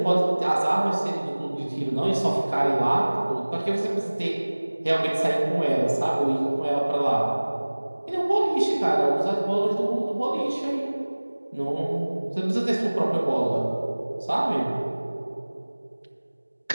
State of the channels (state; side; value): inverted; both; correlation -1.00